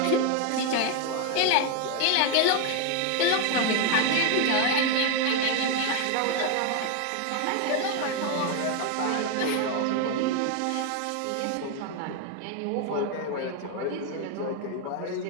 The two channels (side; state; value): both; different; correlation 0.01